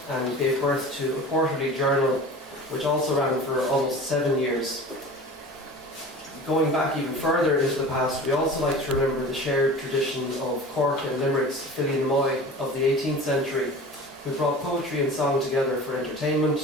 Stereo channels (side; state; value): both; normal; correlation 0.38